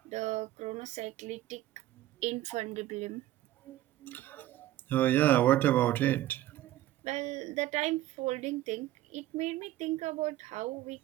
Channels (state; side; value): quieter; left; 14.7 dB